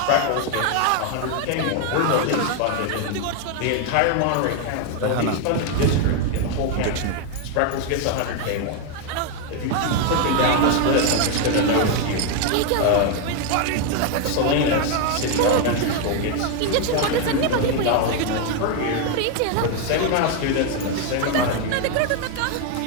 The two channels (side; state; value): both; different; correlation 0.01